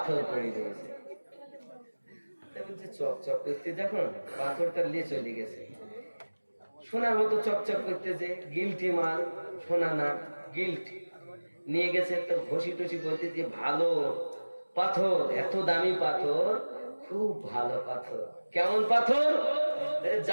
পড়ে রয়েছে চকচক করতে দেখুন পাথরটা নিয়ে চলে গেছে সোনার মতো চকচক করতেছে গিলটি মাল সোনা না গিল্ট নিয়ে গেছে তো ঘষি টসি বলতে যে ভালো পাথর এত দামি পাথর খুব ভালো পাথর কেমন পাথর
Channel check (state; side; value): inverted; both; correlation -1.00